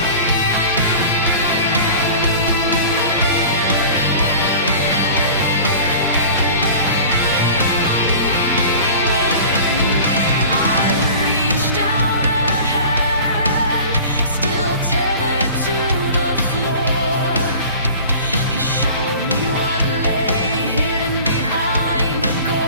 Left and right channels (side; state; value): both; inverted; correlation -0.40